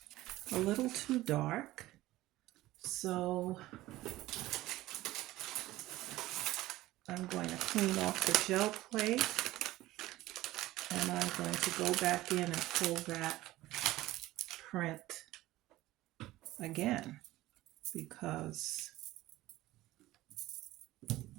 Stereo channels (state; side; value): quieter; left; 16.8 dB